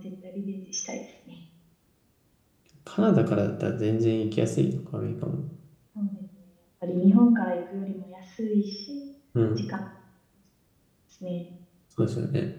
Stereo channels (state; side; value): identical; both; correlation 1.00